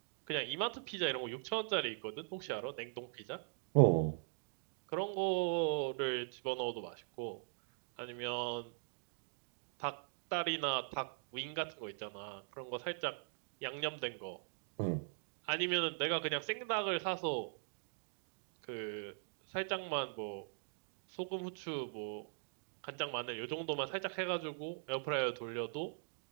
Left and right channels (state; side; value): silent; left; digital silence